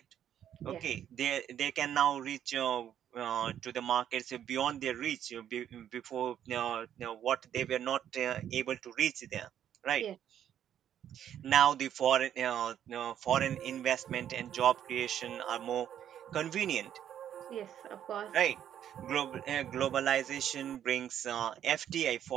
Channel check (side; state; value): left; quieter; 10.1 dB